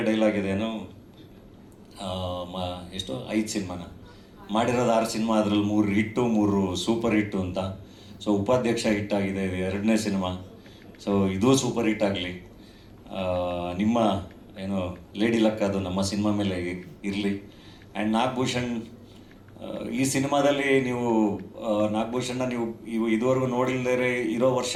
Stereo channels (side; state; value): both; identical; correlation 1.00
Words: ಡೈಲಾಗ್ ಇದೇನು, ಎಷ್ಟು 5 ಸಿನಿಮಾನ ಮಾಡಿರೋದು, 6 ಸಿನಿಮಾ, ಅದರಲ್ಲಿ 3 ಹಿಟ್ಟು 3 ಸೂಪರ್ ಹಿಟ್ಟು ಅಂತ. ಸೊ ಉಪಾಧ್ಯಕ್ಷ ಹಿಟ್ಟಾಗಿದೆ, ಇದು 2ನೇ ಸಿನಿಮಾ. ಸೊ ಇದು ಸೂಪರ್ ಹಿಟ್ ಆಗಲಿ. ನಿಮ್ಮ ಏನು ಲೇಡಿ ಲಕ್ ಅದು ನಮ್ಮ ಸಿನಿಮಾ ಮೇಲೆ ಇರಲಿ. ಆ್ಯಂಡ್ ನಾಗಭೂಷಣ್, ಈ ಸಿನಿಮಾದಲ್ಲಿ ನೀವು ನಾಗಭೂಷಣ್ನ ನೀವು ಇದುವರೆಗೂ ನೋಡಿಲ್ಲದೇ ಇರೋ